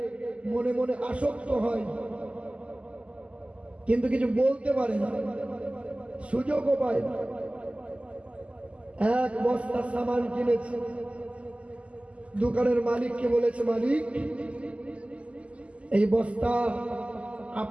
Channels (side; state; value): left; late; 0.059 ms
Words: মনে মনে আসক্ত হয়, কিন্তু কিছু বলতে পারে না, সুযোগও পায় না। 1 বস্তা সামান কিনেছে, দোকানের মালিককে বলেছে, মালিক এই বস্তা